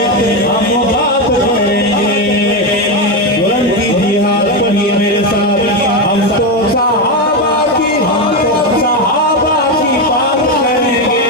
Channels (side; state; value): both; normal; correlation 0.11